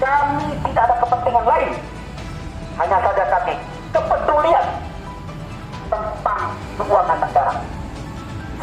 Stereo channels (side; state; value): both; identical; correlation 1.00